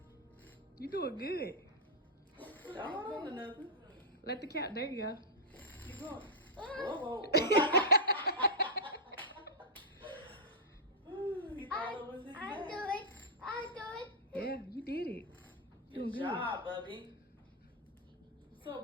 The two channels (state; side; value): normal; both; correlation -0.09